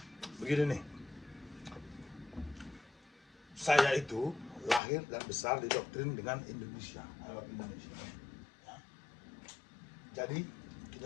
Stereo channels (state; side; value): drops out; right; at 4.8 s